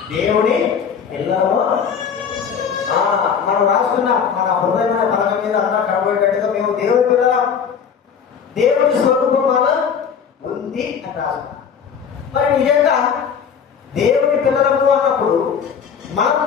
దేవుని పిల్లలము మనం రాసుకున్న మన హృదయమైన పలక మీద అన్నా కనబడేటట్టుగా మేము దేవుని పిల్లలం, దేవుని స్వరూపం మాలో ఉంది అని రాసుకున్నాం. మరి నిజంగా దేవుని పిల్లలము అన్నప్పుడు మనం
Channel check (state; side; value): quieter; right; 7.1 dB